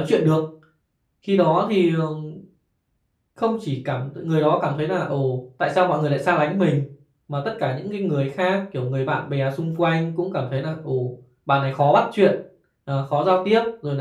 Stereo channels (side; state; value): both; identical; correlation 1.00